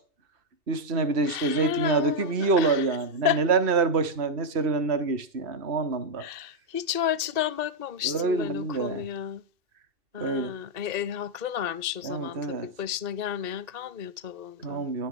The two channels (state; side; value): late; left; 2.7 ms